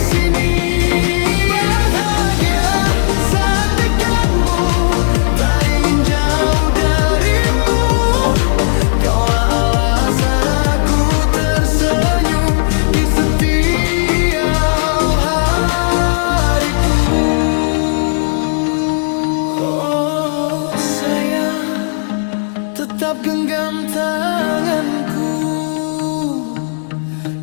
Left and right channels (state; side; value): silent; right; digital silence